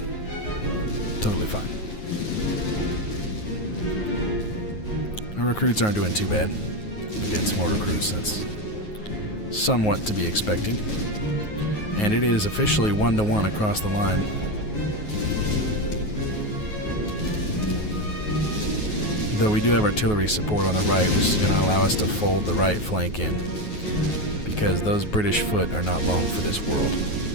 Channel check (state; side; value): late; right; 9.4 ms